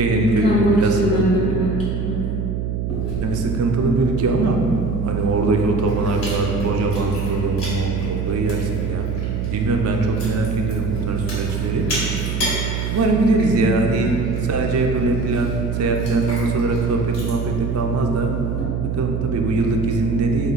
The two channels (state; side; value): noise; right; hum, 2 dB below the sound